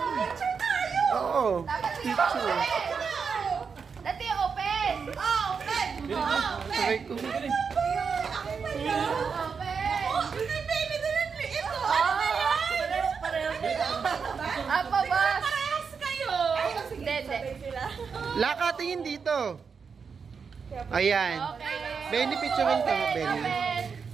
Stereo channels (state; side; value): quieter; left; 5.8 dB